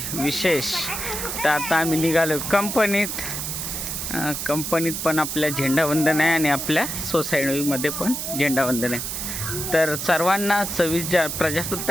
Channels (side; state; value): right; noise; hiss, 4 dB below the sound